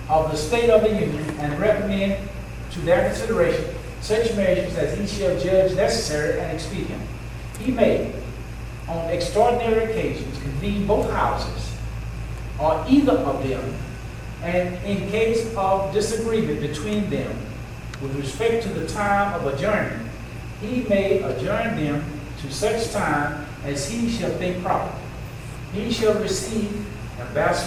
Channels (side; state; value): both; identical; correlation 1.00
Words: of the state of the Union and recommend to their consideration such measures as he shall judge necessary and expedient. He may, on extraordinary occasions, convene both houses or either of them, and in case of disagreement between them with respect to the time of adjournment, he may adjourn them to such time as he shall think proper. He shall receive